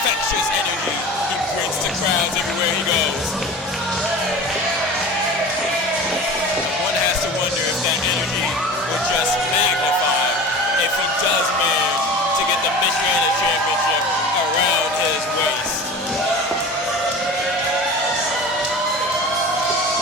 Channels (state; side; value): normal; both; correlation 0.36